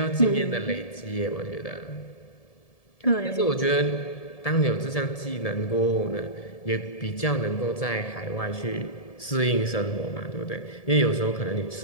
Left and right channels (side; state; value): right; late; 1.7 ms